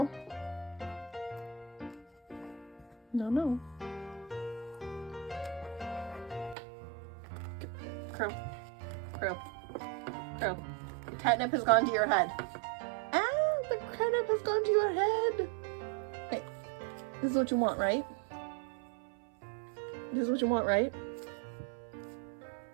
No, no. Crow. Crow. Crow. The catnip has gone to your head. Ah, the catnip has gone to your head. Hey, this is what you want, right? This is what you want, right?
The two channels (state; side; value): drops out; left; at 6.6 s